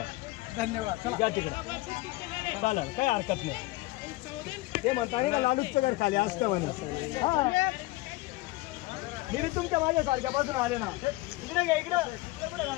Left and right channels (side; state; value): right; quieter; 20.3 dB